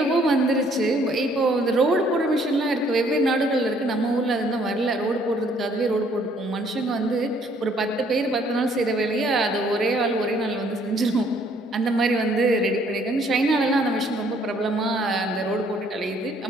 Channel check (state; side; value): normal; both; correlation 0.63